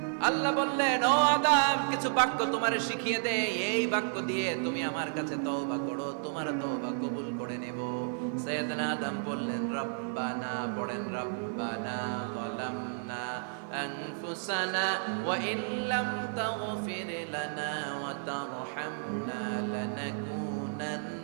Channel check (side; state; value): left; silent; digital silence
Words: আল্লাহ বললেন, ও আদম, কিছু বাক্য তোমারে শিখিয়ে দে, এই বাক্য দিয়ে তুমি আমার কাছে তওবা করো, তোমার তওবা কবুল করে নেব। সাইয়েদনা আদম বললেন, রব্বানা, পড়েন, রব্বানা যালামনা আনফুসানা ওয়া ইন লাম তাগফির লানা ওয়া তারহামনা